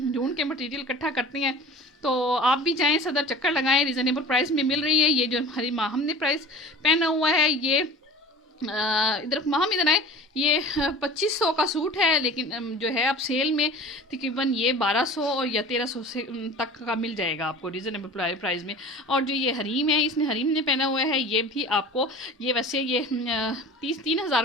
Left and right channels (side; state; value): both; normal; correlation 0.40